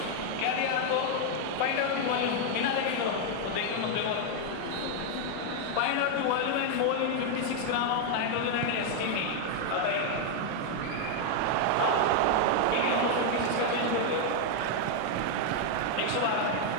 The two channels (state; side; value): different; both; correlation 0.00